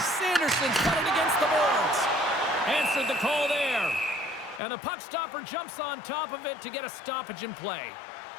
got it against the boards. Answered the call there. And the puck stopper jumps on top of it to get a stoppage in play.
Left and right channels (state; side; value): drops out; right; at 4.6 s